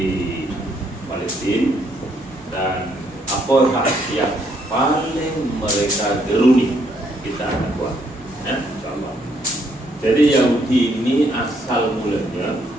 Palestina, dan apa yang paling mereka geruni kita akan buat, ya, insyaallah. Jadi Yahudi ini asal mulanya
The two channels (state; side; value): normal; both; correlation 0.71